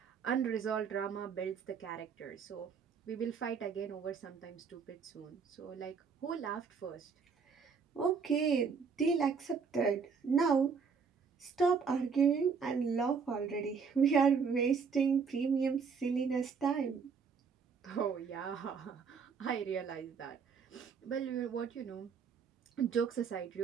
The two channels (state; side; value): quieter; left; 5.8 dB